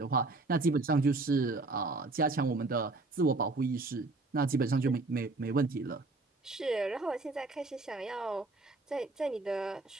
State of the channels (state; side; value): quieter; left; 3.3 dB